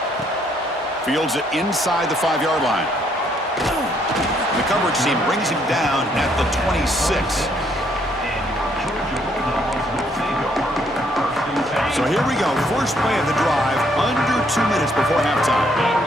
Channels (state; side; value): normal; both; correlation 0.69